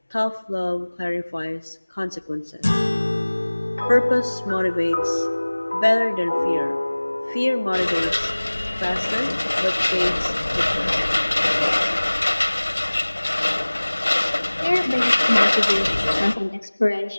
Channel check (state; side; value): inverted; both; correlation -1.00